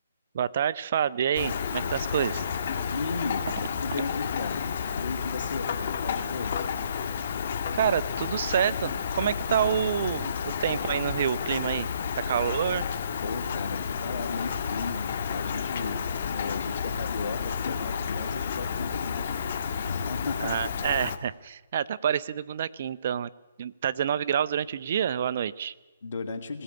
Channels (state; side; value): inverted; both; correlation -0.66